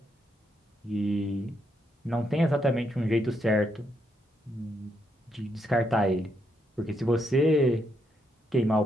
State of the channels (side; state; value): both; normal; correlation 0.78